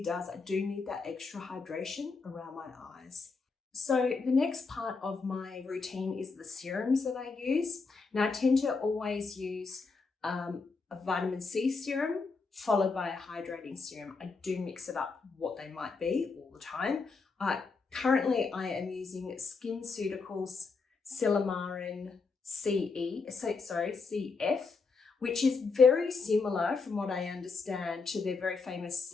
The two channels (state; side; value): quieter; right; 4.4 dB